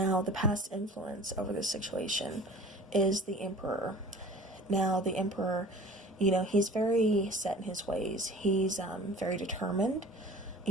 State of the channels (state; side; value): normal; both; correlation 0.43